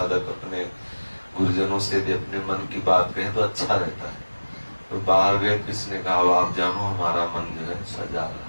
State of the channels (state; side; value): inverted; both; correlation -1.00